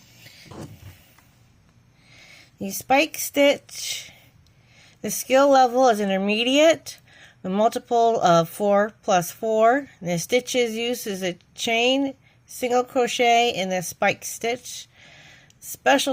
The spike stitch, the skill level is intermediate, the multiple of 4 plus 4. The stitches used is a chain, single crochet, and the spike stitch.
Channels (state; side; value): identical; both; correlation 1.00